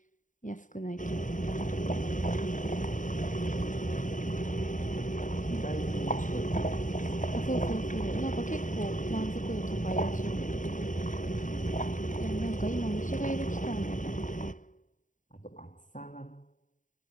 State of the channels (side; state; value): right; late; 0.37 ms